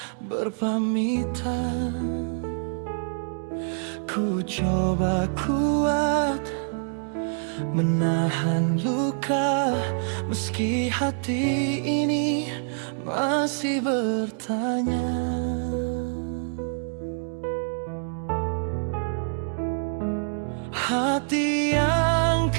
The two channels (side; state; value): left; silent; digital silence